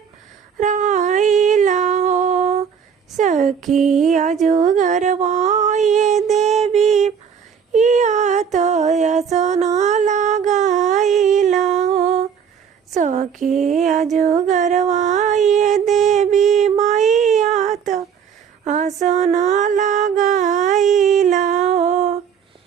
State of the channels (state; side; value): quieter; left; 7.4 dB